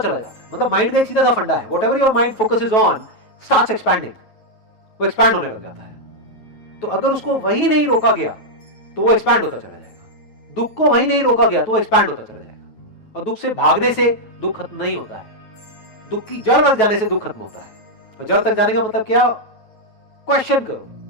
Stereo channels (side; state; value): right; late; 9.3 ms